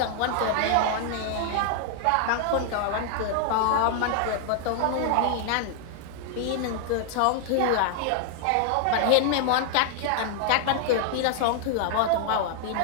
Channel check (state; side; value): different; both; correlation 0.00